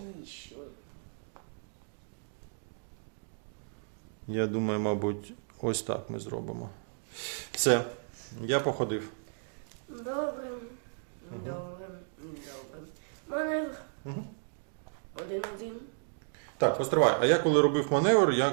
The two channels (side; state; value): left; silent; digital silence